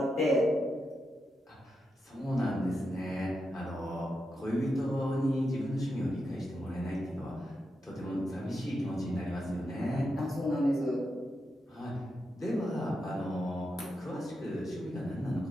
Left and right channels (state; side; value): normal; both; correlation 0.86